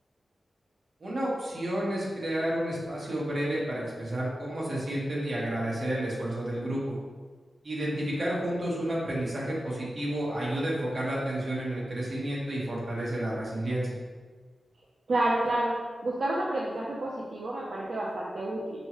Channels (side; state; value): both; normal; correlation 0.92